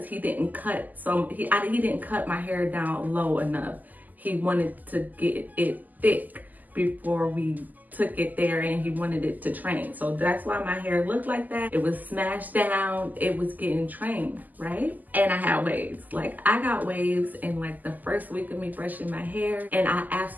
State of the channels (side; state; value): left; late; 0.083 ms